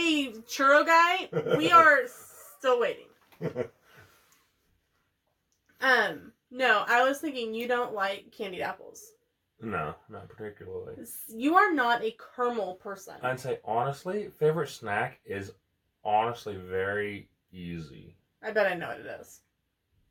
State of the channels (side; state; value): both; identical; correlation 1.00